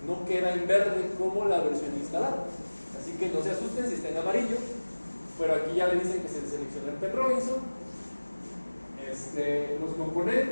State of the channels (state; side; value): inverted; both; correlation -1.00